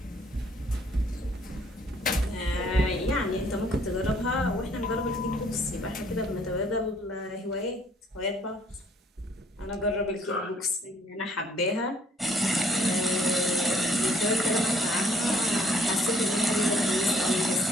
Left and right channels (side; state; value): both; normal; correlation 0.63